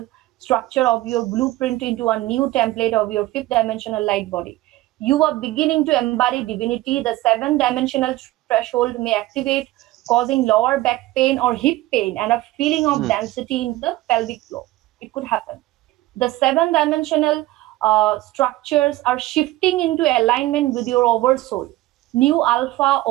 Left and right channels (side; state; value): left; quieter; 17.3 dB